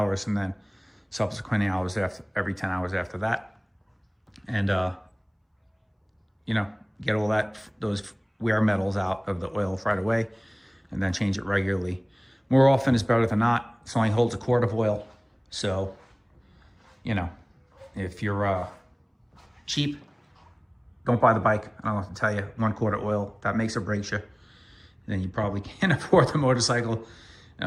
and then subsequent hours every 10 hours after that. And, you know, get all those wear metals out of the oil right away, and then change it regularly. More often is better than not. It only holds a quart of oil. So, you know, if you're cheap, don't buy the bike. I don't have to tell you, 1 quart of oil, that makes or breaks you. Then you probably can't afford the motorcycle.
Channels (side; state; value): both; identical; correlation 1.00